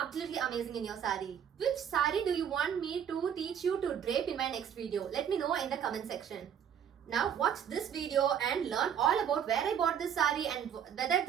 amazing in your saree. Which saree do you want me to teach you to drape in my next video? Let me know in the comment section. Now watch this video and learn all about where I bought this saree and whether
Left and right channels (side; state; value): left; quieter; 8.7 dB